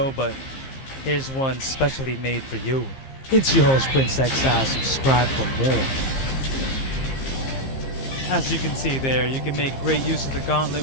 but here's one specially made for you. It's your host, Prince Exile. Subscribe for more. As you can see there, you can make great use of the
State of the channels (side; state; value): right; late; 15 ms